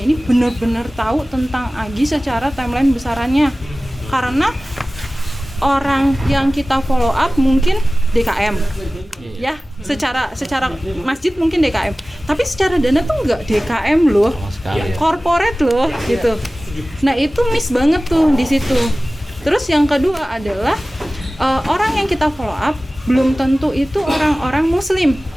benar-benar tahu tentang AGI secara timeline besarannya. Karena orang yang kita follow up mungkin DKM, ya secara masjid mungkin DKM, tapi secara dana tuh nggak DKM loh, corporate loh gitu. Nah itu miss banget tuh di situ. Terus yang kedua adalah orang yang kita follow up belum tentu itu orang-orang muslim,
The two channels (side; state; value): both; normal; correlation 0.97